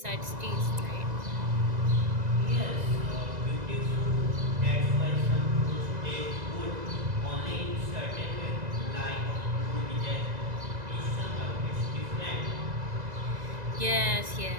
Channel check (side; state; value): left; late; 2.0 ms